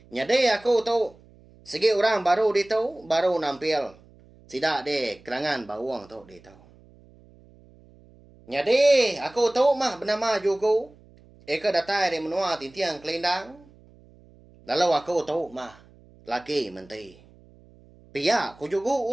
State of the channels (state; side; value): noise; right; hum, 26 dB below the sound